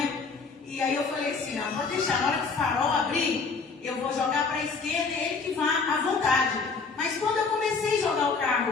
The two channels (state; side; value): quieter; right; 4.7 dB